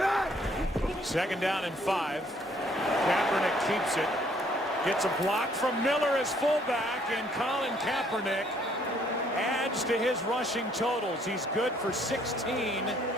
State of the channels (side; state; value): both; normal; correlation 0.64